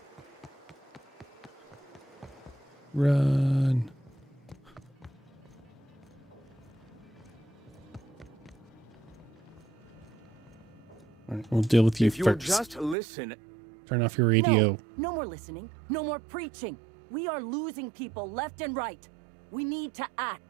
Run. All right, we'll deal with you if first. You'll just listen. Turn off your radio. No more listening. No more preaching. We are losing people left and right. We need to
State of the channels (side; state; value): left; drops out; at 13.0 s